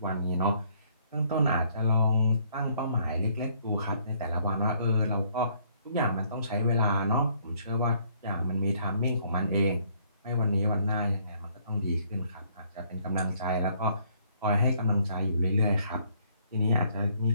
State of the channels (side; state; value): both; inverted; correlation -0.65